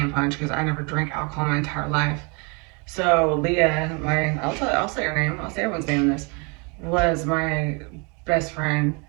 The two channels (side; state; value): left; quieter; 32.4 dB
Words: punch because I never drank alcohol my entire life. So Leah, I'll say her name. I'll say everyone's name in this. Was my best friend,